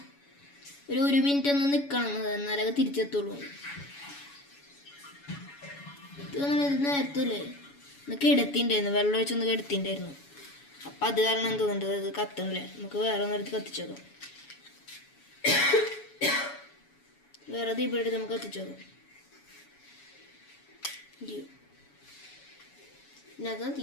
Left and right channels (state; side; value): late; right; 7.1 ms